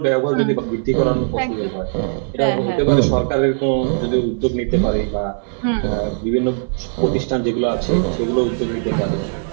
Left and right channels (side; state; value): left; silent; 66 dB below the other